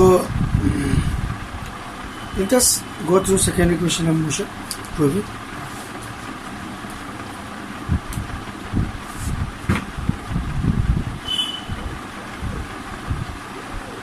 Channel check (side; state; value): both; identical; correlation 1.00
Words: let us go through second equation of motion, prove it.